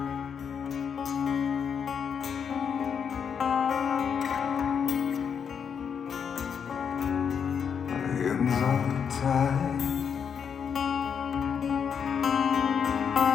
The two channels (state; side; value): quieter; right; 7.1 dB